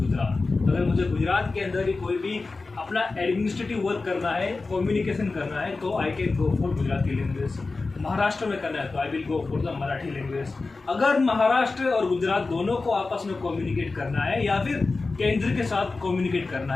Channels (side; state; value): right; quieter; 3.8 dB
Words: अगर मुझे गुजरात के अंदर ही कोई भी अपना एडमिनिस्ट्रेटिव वर्क करना है, कम्युनिकेशन करना है, तो I can go for Gujarati language. Maharashtra में करना है तो I will go for the Marathi language. अगर महाराष्ट्र और गुजरात दोनों को आपस में कम्युनिकेट करना है या फिर केंद्र के साथ कम्युनिकेट करना